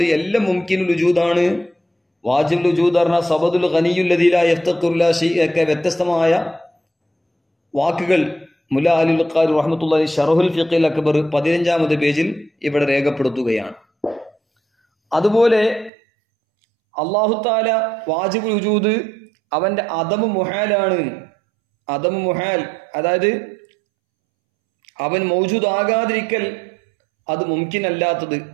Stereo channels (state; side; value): drops out; left; at 15.9 s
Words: എല്ലാം മുംകിനുൽ വജൂദാണ്. വാജിബുൽ വജൂദ് പറഞ്ഞാൽ സബദുൽ ഗനിയ്യുൽ ലദീ ലാ യഫ്തഖിറു ഇലാ ശൈഇൻ ഒക്കെ വ്യത്യസ്തമായ വാക്കുകൾ മുല്ലാ അൽ ഖാരി റഹ്മത്തുള്ളാഹി ശറഹുൽ ഫിഖിൽ അക്ബർ 15-ാമത്തെ പേജിൽ ഇവിടെ രേഖപ്പെടുത്തുകയാണ്. അതുപോലെ അല്ലാഹു തആല വാജിബുൽ വജൂദ് അവന്റെ അദമു മുഹാലാണ്. അദമു മുഹാൽ അതായത് അവൻ മൗജൂദ് ആകാതിരിക്കൽ അത് മുംകിൻ അല്ലാത്തത്,